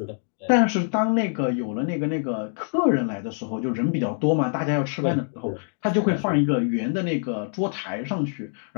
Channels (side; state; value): right; silent; 62 dB below the other